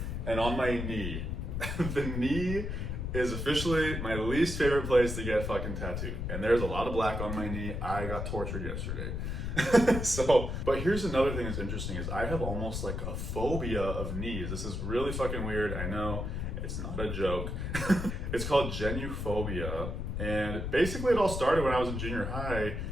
and on my knee. The knee is officially my least favorite place to get fucking tattooed. And there's a lot of black on my knee. I got tortured yesterday. But here's another thing that's interesting is I have almost like a phobia of knees. This is really fucking weird. I know, it's not a joke. It's called genuphobia. And basically it all started when I was in junior high.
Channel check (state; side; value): noise; left; rumble, 3 dB below the sound